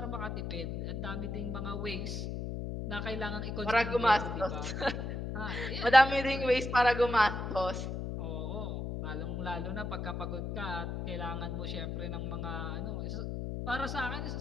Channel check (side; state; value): left; noise; hum, 4 dB below the sound